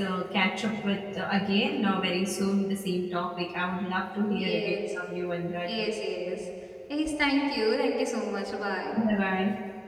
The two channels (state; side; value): identical; both; correlation 1.00